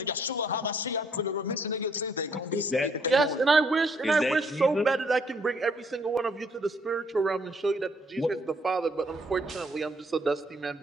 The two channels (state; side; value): normal; both; correlation 0.67